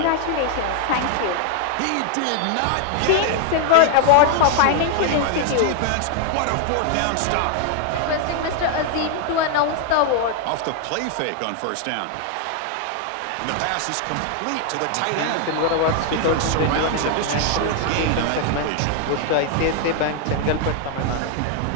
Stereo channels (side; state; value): both; different; correlation 0.00